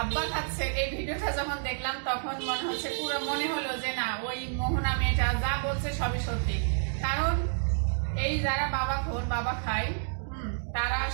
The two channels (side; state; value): left; silent; digital silence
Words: আব্বা খাচ্ছে। এই ভিডিওটা যখন দেখলাম তখন মনে হলো যে না, ওই মোহনা মেয়েটা যা বলছে সবই সত্যি। কারণ এই যারা বাবা খায় তারা